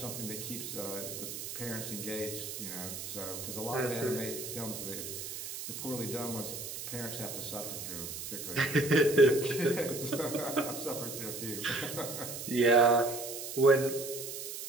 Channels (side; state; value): right; noise; hiss, 7 dB below the sound